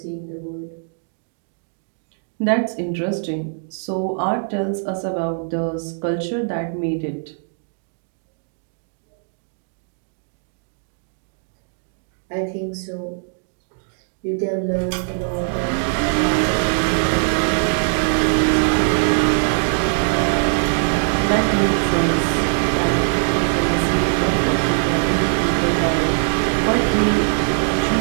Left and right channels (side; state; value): left; silent; 65 dB below the other